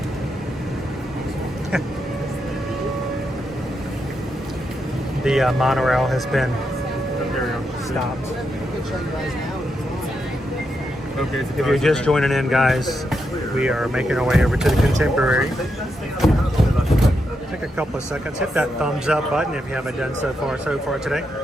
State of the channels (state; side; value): normal; both; correlation 0.83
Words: The monorail has been stopped. Okay, If you're just joining in, guys, we are making our way over to the Contemporary. Take a couple of seconds. Hit that thumbs up button if you haven't done so far today.